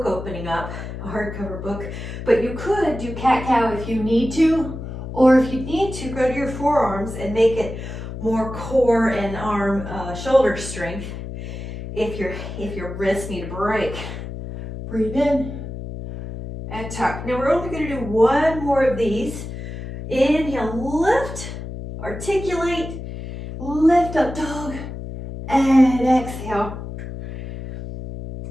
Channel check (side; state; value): left; noise; hum, 8 dB below the sound